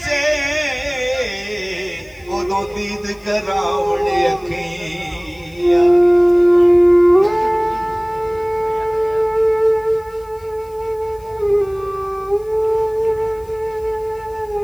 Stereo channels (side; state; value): left; noise; hiss, 29 dB below the sound